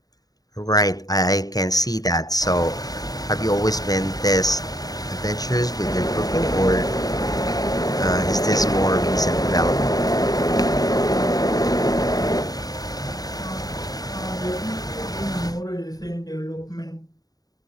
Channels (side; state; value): right; late; 0.18 ms